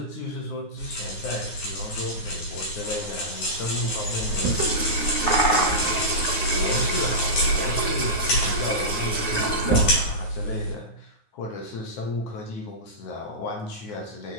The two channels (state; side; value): late; right; 9.6 ms